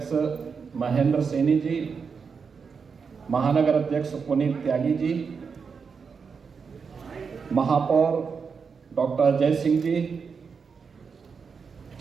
महेंद्र सैनी जी, महानगर अध्यक्ष पुनीत त्यागी जी, महापौर डॉक्टर अजय सिंह जी,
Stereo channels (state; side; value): quieter; left; 5.7 dB